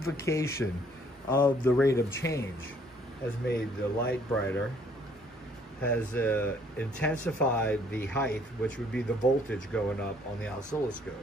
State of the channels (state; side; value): normal; both; correlation 0.62